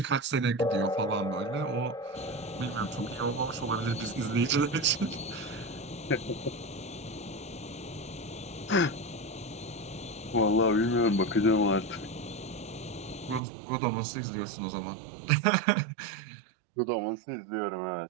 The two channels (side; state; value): left; drops out; at 13.4 s